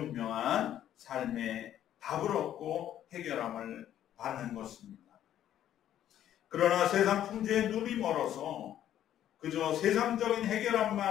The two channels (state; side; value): quieter; right; 11.3 dB